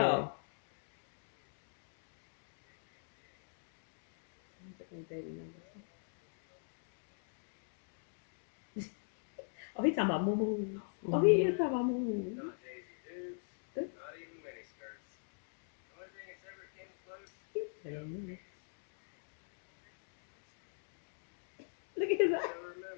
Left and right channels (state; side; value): silent; right; digital silence